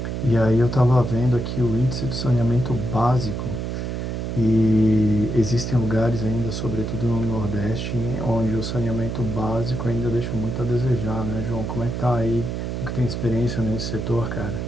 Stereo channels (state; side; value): noise; right; hum, 3 dB below the sound